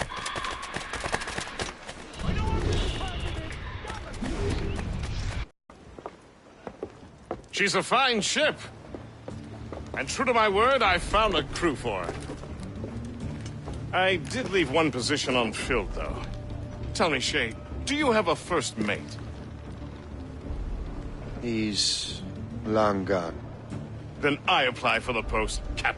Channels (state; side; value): identical; both; correlation 1.00